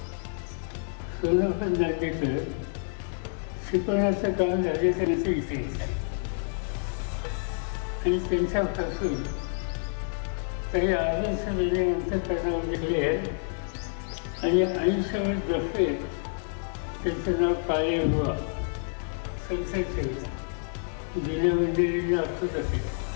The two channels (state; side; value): silent; right; digital silence